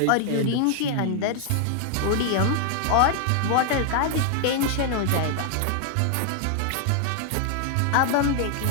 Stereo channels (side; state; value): both; different; correlation 0.00